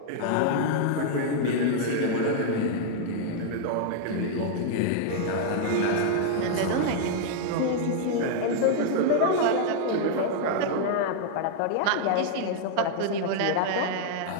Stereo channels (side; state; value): both; different; correlation -0.01